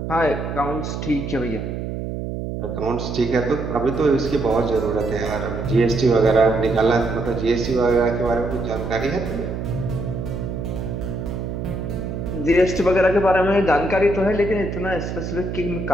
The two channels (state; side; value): noise; right; hum, 5 dB below the sound